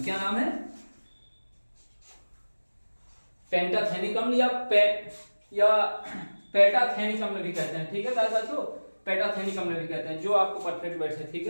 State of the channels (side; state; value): both; inverted; correlation -1.00